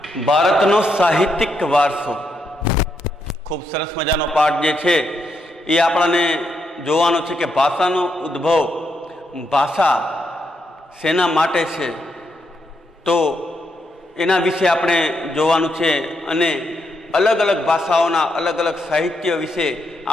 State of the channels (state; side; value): normal; both; correlation 0.80